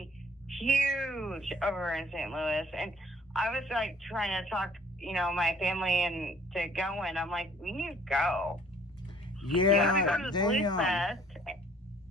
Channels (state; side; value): normal; both; correlation 0.57